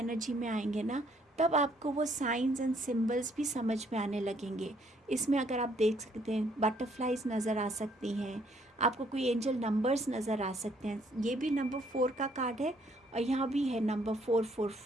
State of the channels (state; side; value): normal; both; correlation 0.66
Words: में आएंगे ना, तब आपको वो साइंस एंड सिम्बल्स भी समझ में आने लगेंगे. इसमें अगर आप देख सकते हैं, बटरफ्लाइज नज़र आ सकती हैं, आपको कोई एंजल नंबर्स नज़र आ सकते हैं. ये भी नंबर 4 का कार्ड है और यहाँ भी है नंबर